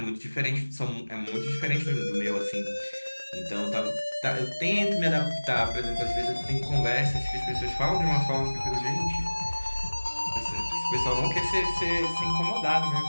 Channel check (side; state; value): both; inverted; correlation -1.00